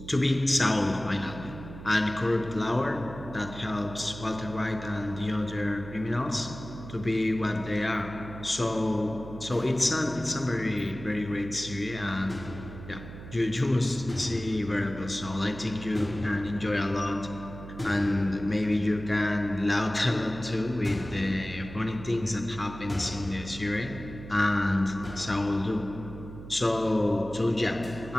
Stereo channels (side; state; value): right; noise; hum, 13 dB below the sound